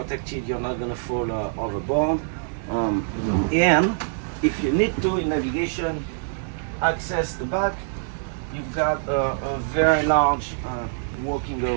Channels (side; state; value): left; silent; 62 dB below the other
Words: You're not going to fall overboard. And if you need to, in navigation, access the back, you've got a very large walking